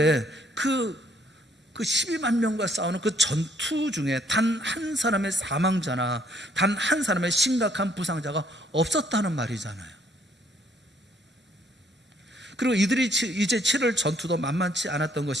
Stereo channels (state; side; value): normal; both; correlation 0.66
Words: 그 12만 명과 싸우는 그 전투 중에 단 한 사람의 사망자나 단 한 사람의 심각한 부상자가 없었다는 말이잖아요. 그리고 이들이 이제 치를 전투도 만만치 않았던